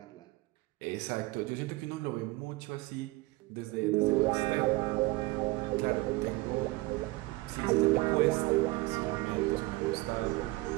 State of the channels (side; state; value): left; quieter; 21.4 dB